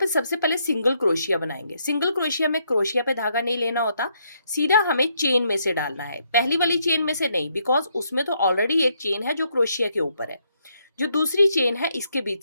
सबसे पहले सिंगल क्रोशिया बनाएंगे। सिंगल क्रोशिया में क्रोशिया पे धागा नहीं लेना होता, सीधा हमें चेन में से डालना है। पहली वाली चेन में से नहीं, बिकॉज उसमें तो ऑलरेडी एक चेन है जो क्रोशिया के ऊपर है। जो दूसरी चेन है इसके बीच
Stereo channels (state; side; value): inverted; both; correlation -0.74